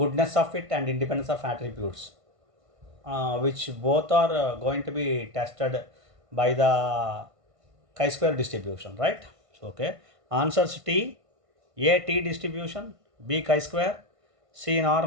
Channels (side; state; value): left; late; 1.5 ms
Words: goodness of fit and independence of attributes. Which both are going to be tested by the chi-square distribution, right? So, okay, answers T, A T distribution, B chi-square, C